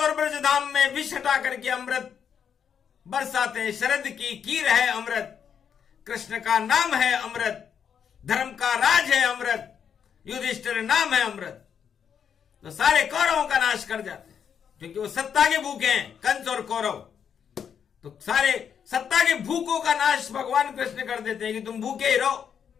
ब्रजधाम में विष हटा करके अमृत बरसाते हैं। शरद की कीर है अमृत, कृष्ण का नाम है अमृत, धर्म का राज है अमृत, युधिष्ठिर नाम है अमृत। तो सारे कौरवों का नाश कर जाते हैं क्योंकि वो सत्ता के भूखे हैं, कंस और कौरव। तो सारे सत्ता के भूखों का नाश भगवान कृष्ण कर देते हैं कि तुम भूखे ही रहो,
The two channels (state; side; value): quieter; right; 7.8 dB